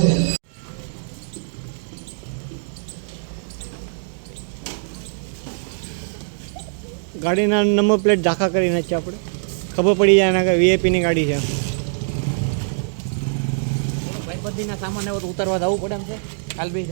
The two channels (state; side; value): silent; left; digital silence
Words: છે. ગાડીના નંબર પ્લેટ ઝાંખા કરી નાખીએ આપણે, ખબર પડી જાય એના કે વીઆઈપીની ગાડી છે. ભાઈબંધીના સામાન એવો તો ઉતારવા જવું પડે એમ છે. કાલ બે